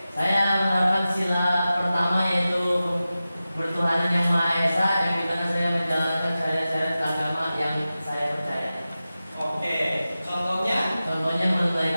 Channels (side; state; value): both; inverted; correlation -0.94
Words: Saya menerapkan sila pertama yaitu bertuhanan yang Maha Esa, yang dimana saya menjalankan syariat-syariat agama yang saya percaya. Oke. Contohnya? Contohnya